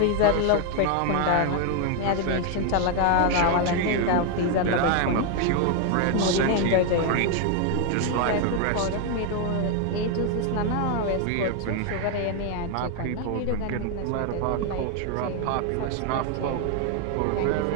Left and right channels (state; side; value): different; both; correlation 0.01